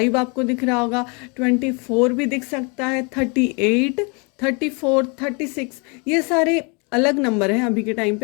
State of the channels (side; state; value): right; quieter; 32.5 dB